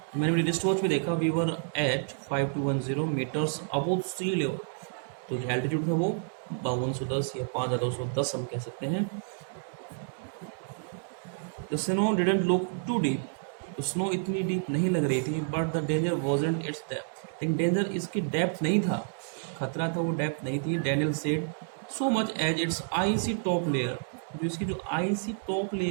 मैंने मेरी रिस्ट वॉच पे देखा। We were at 5210 metres above sea level, तो जो एल्टीट्यूड था वो 5210 या 5210 हम कह सकते हैं। The snow didn't look too deep, तो स्नो इतनी डीप नहीं लग रही थी, but the danger wasn't its depth, लेकिन डेंजर इसकी डेप्थ नहीं था, खतरा था वो डेप्थ नहीं थी। Daniel said so much as its icy top layer, जो इसकी जो आईसी टॉप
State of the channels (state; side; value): silent; left; digital silence